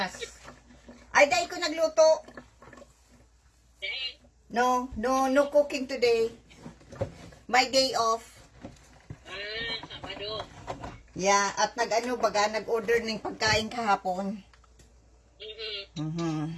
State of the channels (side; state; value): both; identical; correlation 1.00